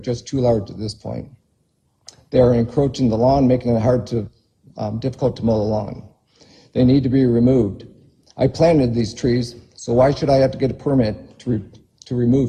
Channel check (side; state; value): both; identical; correlation 1.00